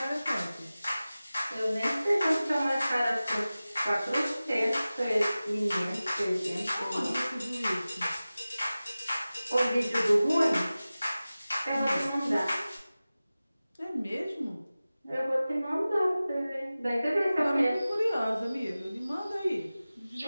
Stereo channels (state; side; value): inverted; both; correlation -0.97